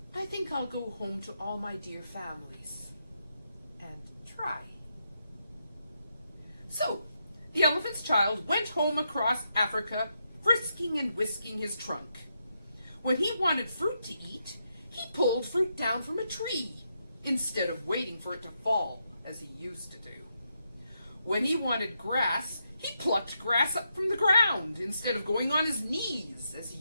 I think I'll go home to all my dear families and try." So, the elephant's child went home across Africa, frisking and whisking his trunk. When he wanted fruit to eat, he pulled fruit down from a tree, instead of waiting for it to fall, as he used to do. When he wanted grass, he plucked grass up from the ground, instead of going on his knees, as he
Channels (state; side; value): inverted; both; correlation -0.82